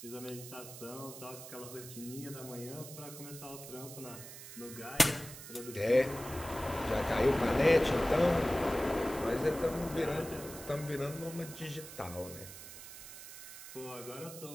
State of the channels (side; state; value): right; noise; hiss, 13 dB below the sound